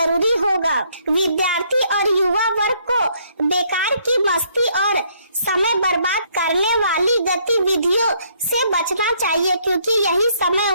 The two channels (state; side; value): inverted; both; correlation -0.67